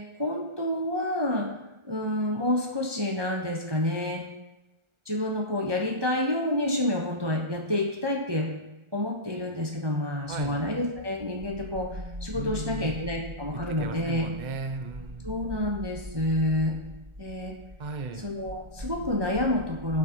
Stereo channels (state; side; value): late; left; 1.2 ms